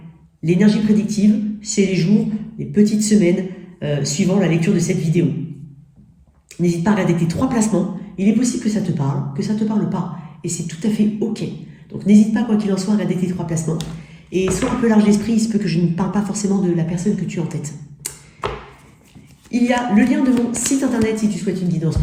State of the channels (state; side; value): identical; both; correlation 1.00